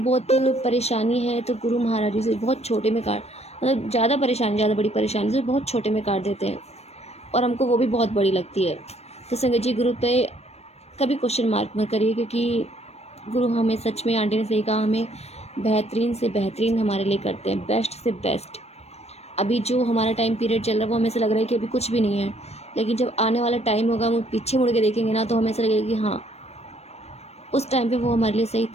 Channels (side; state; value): right; late; 0.31 ms